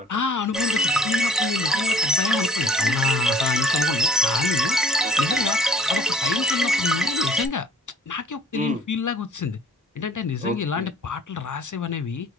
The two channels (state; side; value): normal; both; correlation 0.54